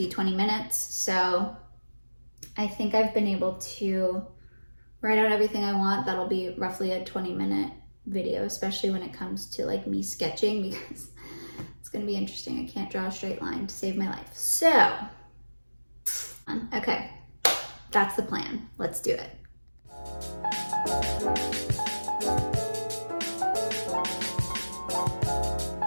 20 minutes. So I think I've been able to write out everything I want. That'll be roughly a 20-minute video, especially when it comes to like me sketching, because it's going to be interesting. I can't draw a straight line to save my life. So, okay, that's the plan. Let's do it.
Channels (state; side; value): inverted; both; correlation -1.00